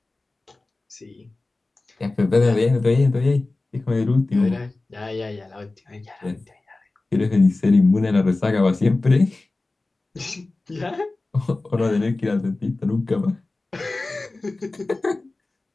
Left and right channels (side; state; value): right; quieter; 3.2 dB